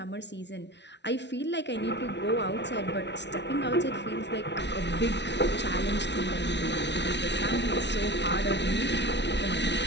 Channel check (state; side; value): late; right; 0.51 ms